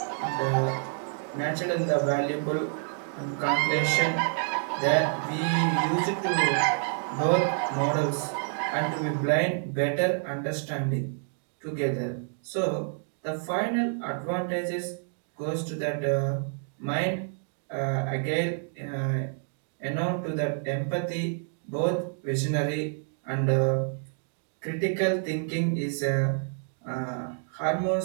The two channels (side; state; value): left; silent; 59 dB below the other